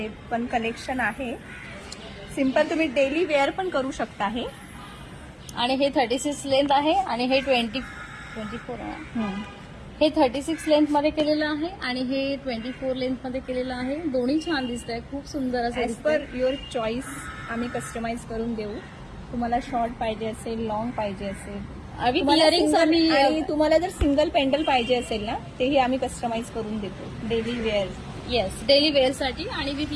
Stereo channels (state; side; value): identical; both; correlation 1.00